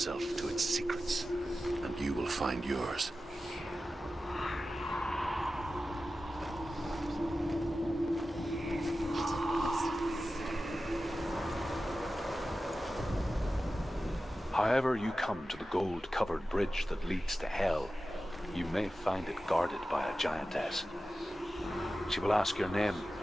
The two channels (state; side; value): normal; both; correlation 0.94